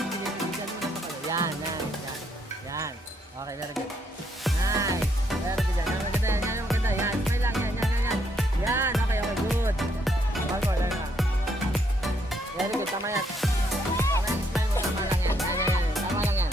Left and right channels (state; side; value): normal; both; correlation 0.73